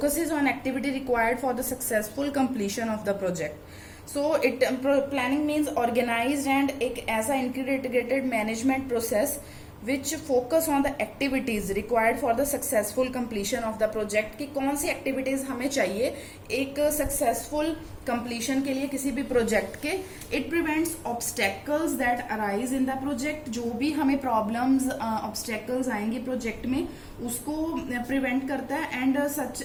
on activity required for the successful completion of the project. So planning means organized and एक ऐसा integrated management process which focus on the activities required for the successful completion of the project, कि कौन सी activities हमें चाहिए एक successful completion के लिए किसी भी project के. It prevents obstacles that arise in the project. जो भी हमें problems obstacles आएंगे project में उसको prevent करता है, and such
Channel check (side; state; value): both; identical; correlation 1.00